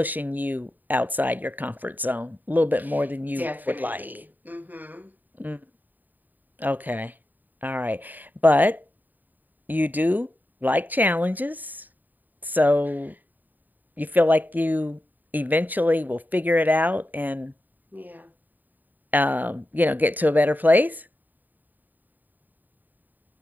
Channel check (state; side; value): late; left; 0.086 ms